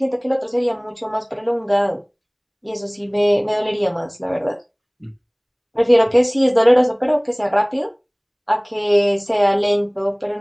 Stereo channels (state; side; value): identical; both; correlation 1.00